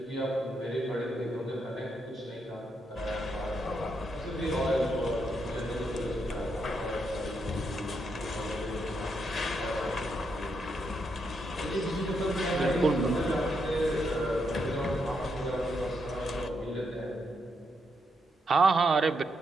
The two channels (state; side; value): normal; both; correlation 0.80